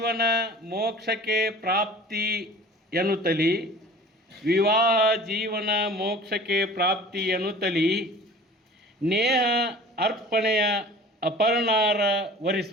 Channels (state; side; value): normal; both; correlation 0.44